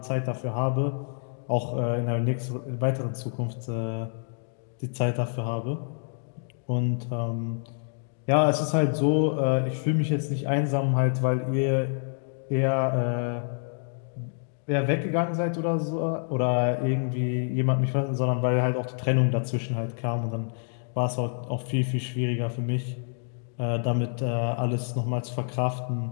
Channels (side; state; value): right; silent; digital silence